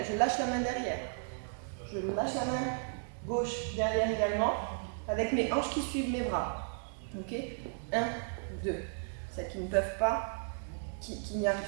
lâche la main derrière. Je lâche la main gauche derrière également, avec mes hanches qui suivent mes bras. Ok? 1, 2. Celles qui ne peuvent pas, qui n'y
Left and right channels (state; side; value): silent; left; digital silence